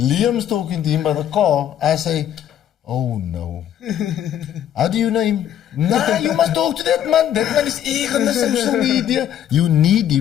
talking to him by the car. I say, oh no. How do you know him? Nah, you must talk to that man. That man is eager on the social media. You need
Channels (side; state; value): right; quieter; 10.4 dB